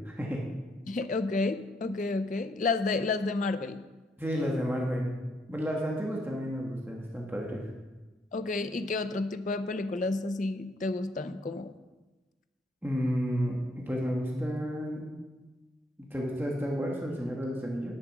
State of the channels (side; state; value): both; normal; correlation 0.72